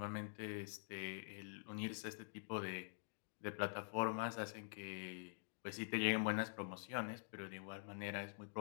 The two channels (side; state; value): right; silent; digital silence